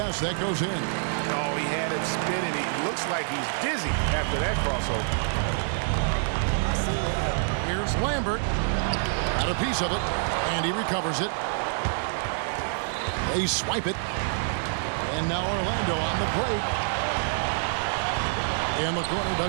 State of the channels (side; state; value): left; silent; digital silence